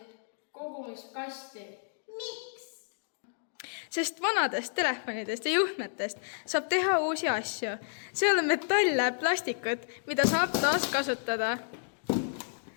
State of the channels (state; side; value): silent; right; digital silence